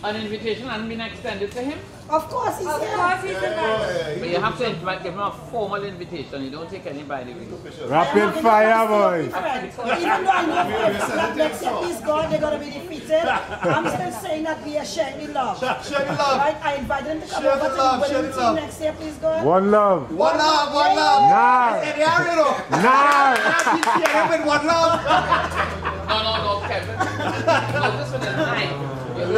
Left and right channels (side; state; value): both; identical; correlation 1.00